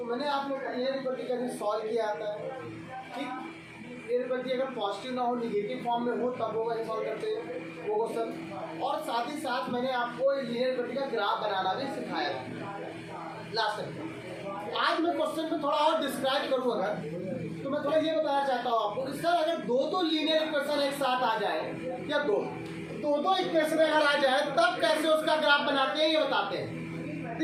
मैंने आप लोग को लीनियर इक्वालिटी कैसे सॉल्व किया आता है। ठीक, लीनियर इक्वालिटी अगर पॉजिटिव ना हो, निगेटिव फॉर्म में हो, तब वो कैसे सॉल्व करते हैं वो क्वेश्चन। और साथ ही साथ मैंने आपको लीनियर इक्वालिटी का ग्राफ बनाना भी सिखाया था लास्ट टाइम। आज मैं क्वेश्चन में थोड़ा और डिस्क्राइब करूँ अगर, तो मैं थोड़ा ये बताना चाहता हूँ आपको कि सर अगर दो लीनियर इक्वेशन एक साथ आ जाए या दो इक्वेशन अगर आ जाए तब कैसे उसका ग्राफ बनाते हैं ये बताते हैं।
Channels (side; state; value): both; identical; correlation 1.00